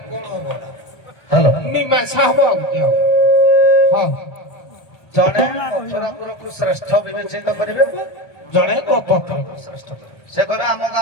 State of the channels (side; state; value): right; late; 1.3 ms